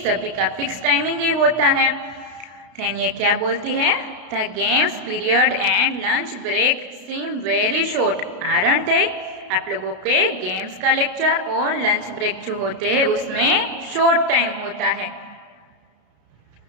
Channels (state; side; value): late; left; 33 ms